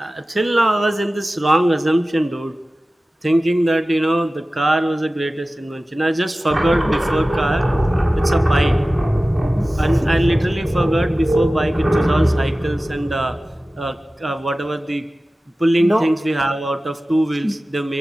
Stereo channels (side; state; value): both; normal; correlation 0.96